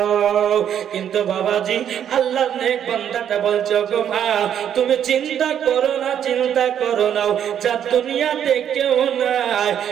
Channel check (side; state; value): left; quieter; 9.4 dB